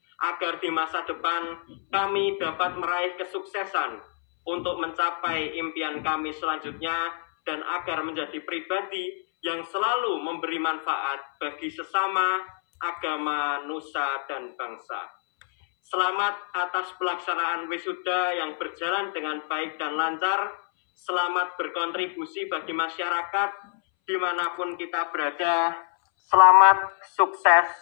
agar di masa depan kami dapat meraih kesuksesan untuk mencapai impian kami selanjutnya dan agar menjadi pribadi yang selalu memberi manfaat bagi sesama, agama, nusa, dan bangsa. Selamat atas pelaksanaan wisuda yang berjalan dengan baik dan lancar. Selamat berkontribusi bagi masyarakat dimanapun kita berada. Selamat, sukses,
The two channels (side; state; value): right; silent; 60 dB below the other